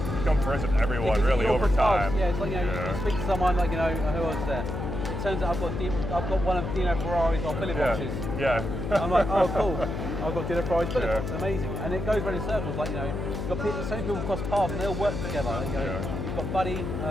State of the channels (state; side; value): noise; left; hum, 4 dB below the sound